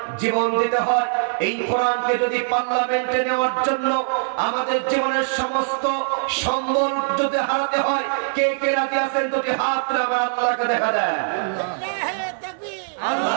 জীবন দিতে হয়, এই কোরআনকে যদি পার্লামেন্টে নেওয়ার জন্য আমাদের জীবনের সমস্ত সম্বল যদি হারাতে হয়, কে কে রাজি আছেন? দুটি হাত তুলে আল্লাহকে দেখা যায়।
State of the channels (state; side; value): silent; left; digital silence